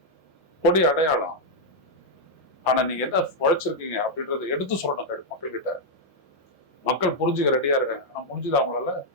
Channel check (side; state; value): both; normal; correlation -0.03